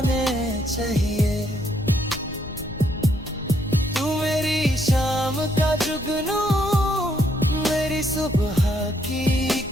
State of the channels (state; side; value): noise; left; rumble, 15 dB below the sound